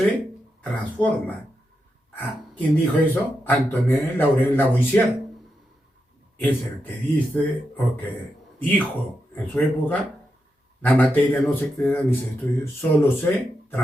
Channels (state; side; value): normal; both; correlation 0.86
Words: transforma. ¿Quién dijo eso? Antoine Laurent Lavoisier. Es el que dice, o que dijo en su época, la materia no se crea ni se destruye, solo se